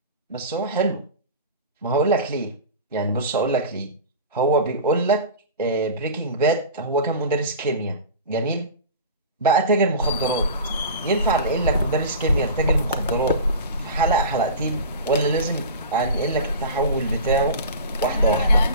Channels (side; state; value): both; inverted; correlation -0.33